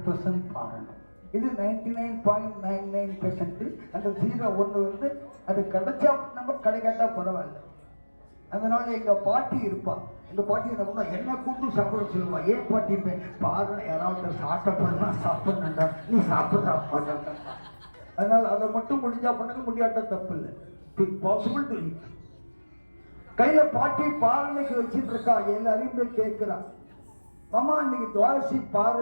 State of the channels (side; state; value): both; inverted; correlation -1.00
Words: பாரணம். இது 99.99%. அந்த 0.1 வந்து அது கிடைச்சா நம்ம கிடைக்காட்டா பரவாயில்ல. அதனால எங்க பாட்டி இருப்பா. எங்க பாட்டி என்ன பண்ணா, என்ன கூட்டு சாப்பிட சொல்லுவா. ஏன் பாட்டி பாருங்க, யாராவது சாப்பிட்டா சாப்பிடணுண்டா, நீ சாப்பிட்றா பாருங்க. அதனால அதை மட்டும் முடிஞ்சா பண்ணுங்க, முடியாட்டா தப்பு இல்லை. Possible to eat. கையில பாட்டி பாரணைக்கு வச்சுட்டு இருக்கா. எல்லாரையும் போய் கேட்கிறா, மாமா இன்னைக்கு துவாதசி